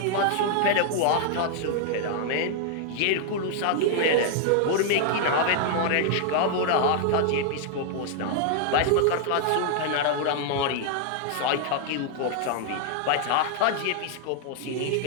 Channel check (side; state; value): both; different; correlation 0.00